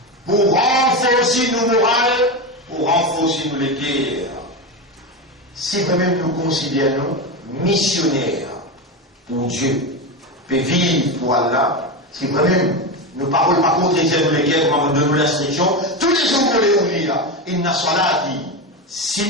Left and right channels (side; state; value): both; normal; correlation 0.17